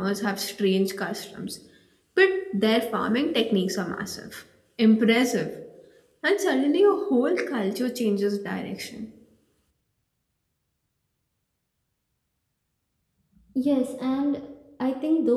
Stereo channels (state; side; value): identical; both; correlation 1.00